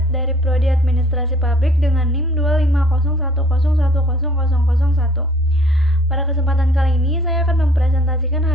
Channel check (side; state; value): both; normal; correlation 0.56